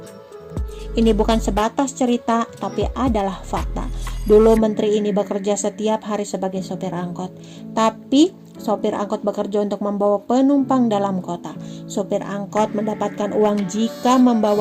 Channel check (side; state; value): both; identical; correlation 1.00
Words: Ini bukan sebatas cerita, tapi adalah fakta. Dulu menteri ini bekerja setiap hari sebagai sopir angkot, tapi sopir angkot bekerja untuk membawa penumpang dalam kota. Sopir angkot mendapatkan uang jika